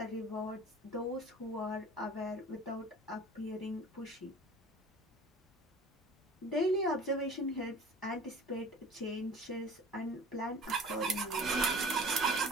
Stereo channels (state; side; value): normal; both; correlation 0.44